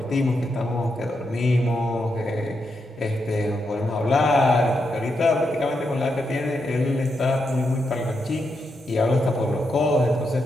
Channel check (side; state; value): both; normal; correlation 0.83